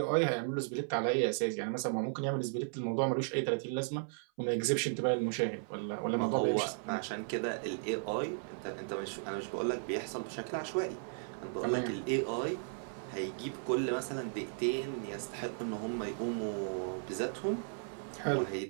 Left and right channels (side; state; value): left; silent; 54 dB below the other